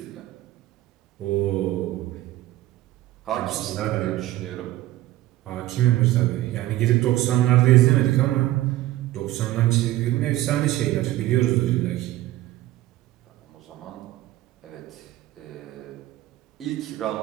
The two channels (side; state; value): left; quieter; 15.5 dB